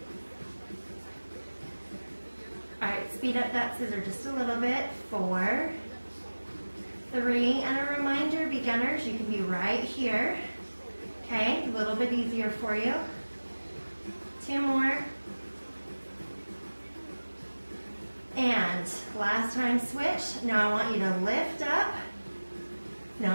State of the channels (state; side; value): inverted; both; correlation -1.00